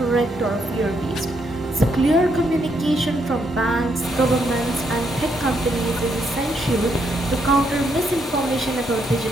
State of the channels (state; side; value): normal; both; correlation 0.76